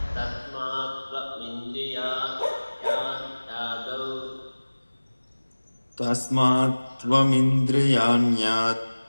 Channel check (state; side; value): inverted; both; correlation -1.00